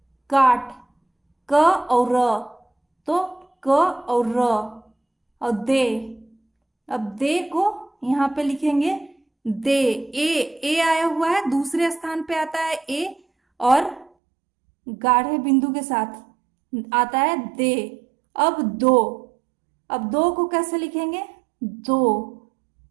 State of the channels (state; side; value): drops out; left; at 14.1 s